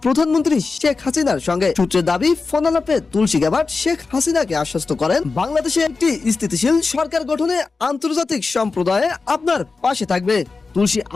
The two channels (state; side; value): quieter; right; 4.2 dB